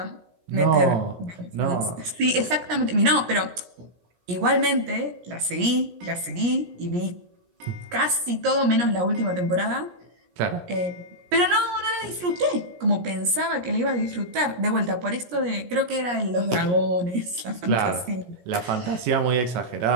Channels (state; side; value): late; left; 17 ms